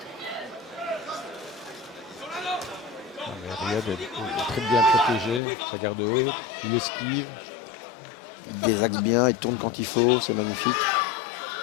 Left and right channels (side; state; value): right; drops out; at 5.4 s